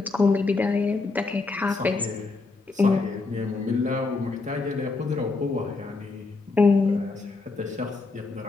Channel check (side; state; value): right; quieter; 3.8 dB